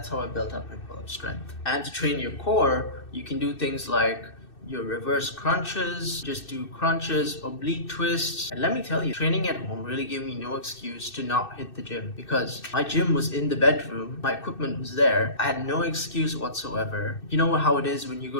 how I built up my pull-up strength. And to train your core, you can do things like your reverse crunches, just do crunches, oblique twists. And let me tell you, training at home really gave me no excuse to not hit the gym, because my gym was in the bedroom, my equipment was there. I had no excuse whatsoever. You know how it is when you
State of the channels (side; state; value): right; late; 2.6 ms